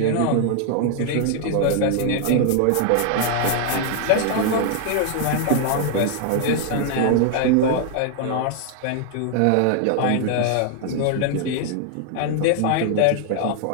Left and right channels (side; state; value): both; different; correlation 0.00